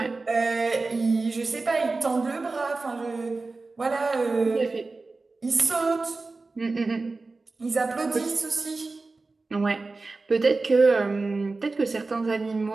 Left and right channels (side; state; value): left; quieter; 3.6 dB